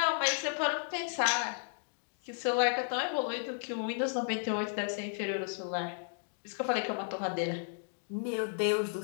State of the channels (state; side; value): silent; right; digital silence